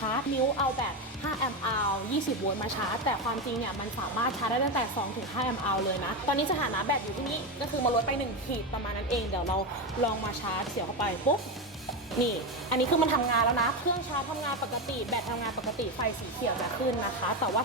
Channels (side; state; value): both; normal; correlation 0.14